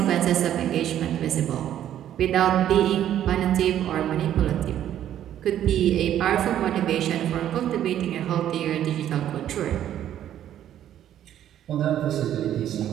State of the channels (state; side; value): quieter; left; 11.1 dB